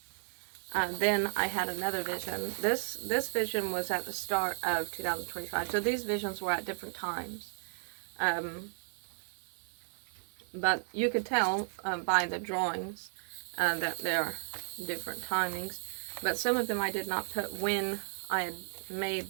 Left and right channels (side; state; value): left; silent; digital silence